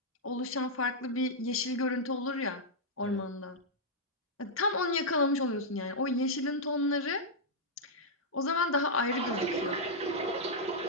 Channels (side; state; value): both; normal; correlation -0.07